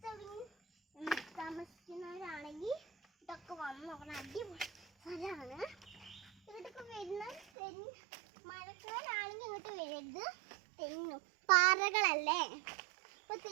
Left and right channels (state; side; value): drops out; left; at 7.5 s